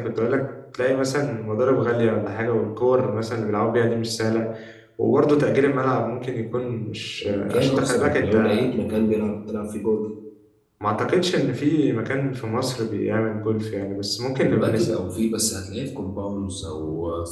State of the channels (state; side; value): identical; both; correlation 1.00